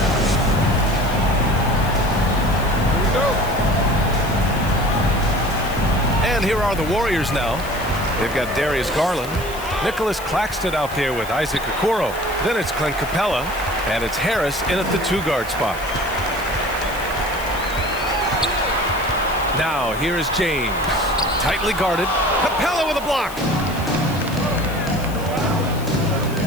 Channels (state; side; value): noise; left; hiss, 16 dB below the sound